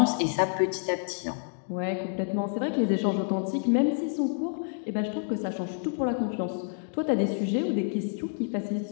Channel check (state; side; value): silent; right; digital silence